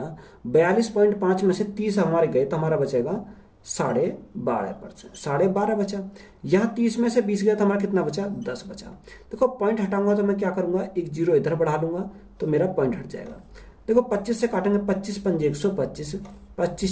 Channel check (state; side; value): identical; both; correlation 1.00